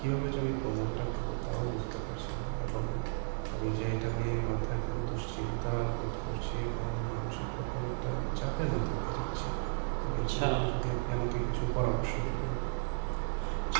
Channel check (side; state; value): left; silent; digital silence